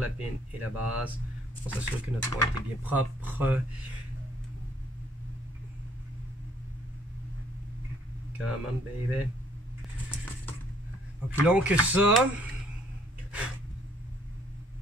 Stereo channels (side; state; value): both; normal; correlation 0.62